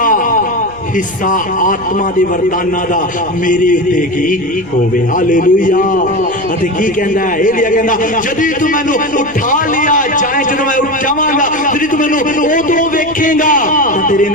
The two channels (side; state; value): left; noise; rumble, 24 dB below the sound